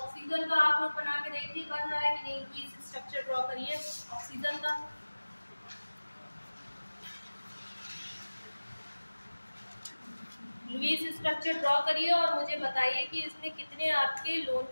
का आप लोग बना के देखिए बन रहा है कि नहीं, प्लीज स्ट्रक्चर ड्रॉ करिए ऑक्सीजन का। लुईस स्ट्रक्चर ड्रॉ करिए और मुझे बताइए कि इसमें कितने आपके लोन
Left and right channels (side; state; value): both; inverted; correlation -1.00